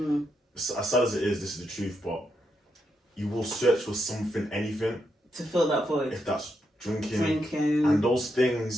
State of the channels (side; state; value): both; normal; correlation 0.82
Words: As sad as it is, this is the truth, but you will search for something, anything to fill that void. If that's drinking, and those